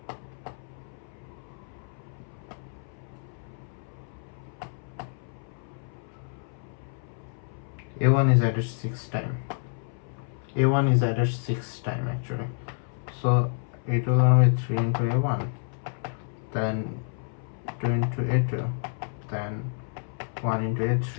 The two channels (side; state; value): right; silent; 59 dB below the other